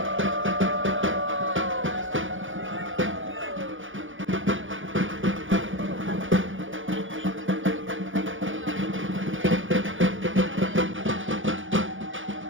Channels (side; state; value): left; late; 0.57 ms